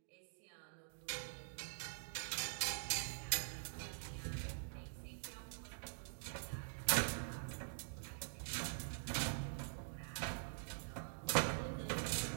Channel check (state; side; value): silent; left; digital silence